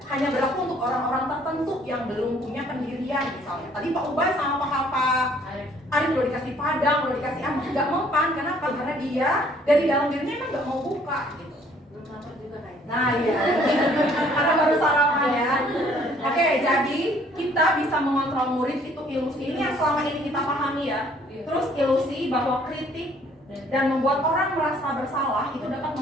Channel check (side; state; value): both; normal; correlation 0.60